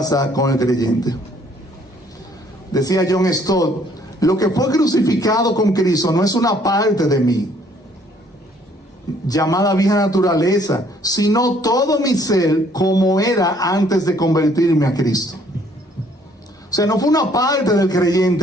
con el creyente. Decía John Stott, lo que fue crucificado con Cristo no es una parte de mí, llamada vieja naturaleza, sino todo mi ser como era antes de convertirme a Cristo. O sea, no fue una parte del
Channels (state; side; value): normal; both; correlation 0.63